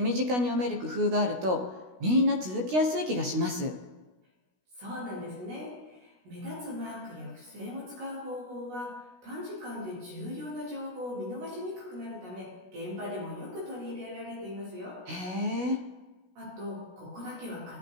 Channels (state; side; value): late; left; 16 ms